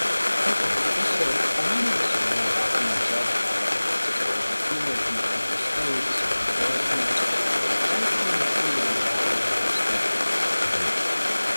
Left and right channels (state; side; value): inverted; both; correlation -1.00